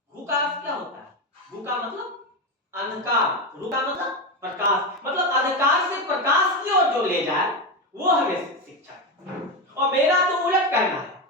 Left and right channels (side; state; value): both; normal; correlation 0.14